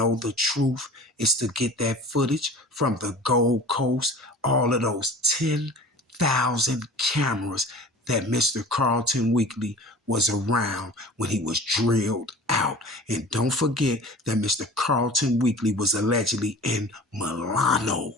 the truth is to get that footage from the Gold Coast, all of those 10,000 cameras that Mr. Carlton Weekly was around when he was drilled out. And don't forget that Mr. Carlton Weekly was allegedly in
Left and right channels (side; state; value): both; normal; correlation 0.41